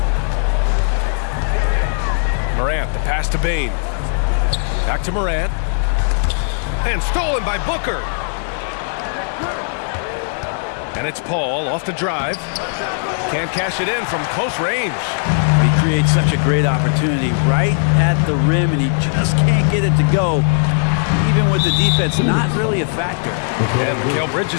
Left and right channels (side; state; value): right; silent; digital silence